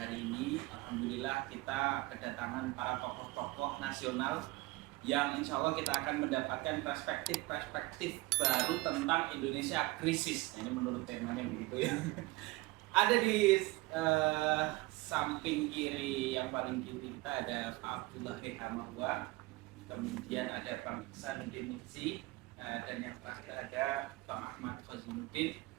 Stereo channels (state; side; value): quieter; left; 21.3 dB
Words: ini, alhamdulillah kita kedatangan para tokoh-tokoh nasional yang insya Allah kita akan mendapatkan perspektif baru tentang Indonesia krisis. Ini menurut temanya begitu ya. Ada di samping kiri yang paling kiri kita ada Pak Abdullah Hamawa, kemudian ada Bang Ihsanuddin Nursi, dan yang terakhir ada Bang Ahmad Khazinuddin.